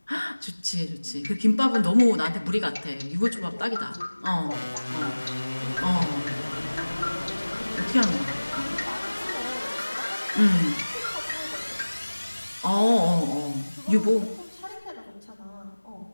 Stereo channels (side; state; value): both; inverted; correlation -1.00